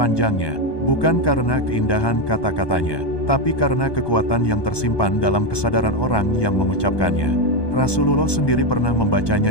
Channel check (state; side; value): late; right; 1.2 ms